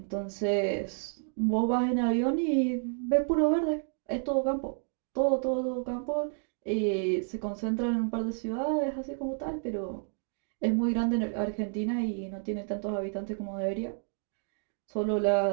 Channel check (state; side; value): silent; left; 58 dB below the other